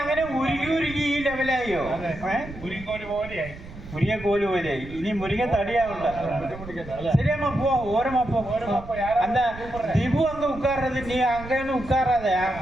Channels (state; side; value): noise; right; rumble, 14 dB below the sound